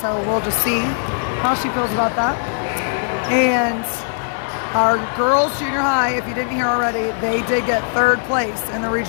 we'll just see how she feels about that. And our girls junior high, if you didn't hear already, they did get 3rd place in the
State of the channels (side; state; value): right; silent; digital silence